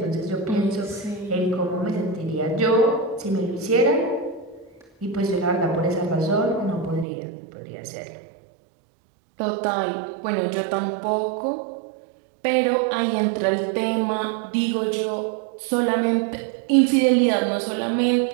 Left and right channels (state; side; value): drops out; left; at 7.1 s